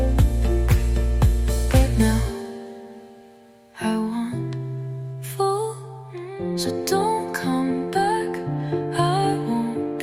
but now I want full. So don't come back, I won't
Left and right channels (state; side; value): identical; both; correlation 1.00